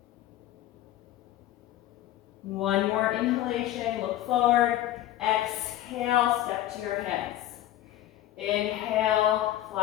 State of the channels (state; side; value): quieter; right; 13.6 dB